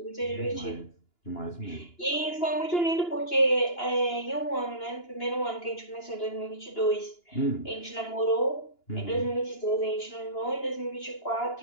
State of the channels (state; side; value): late; right; 2.9 ms